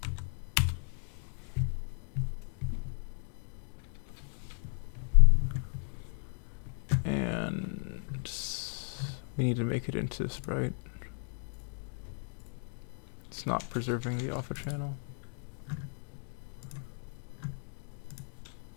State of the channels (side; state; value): right; silent; 54 dB below the other